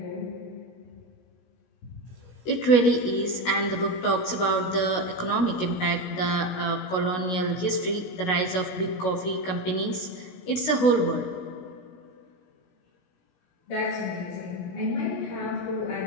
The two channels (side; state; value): right; late; 16 ms